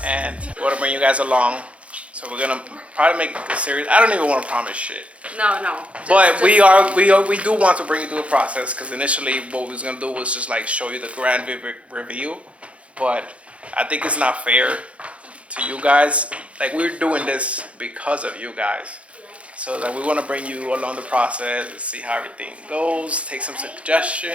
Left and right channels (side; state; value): left; late; 0.062 ms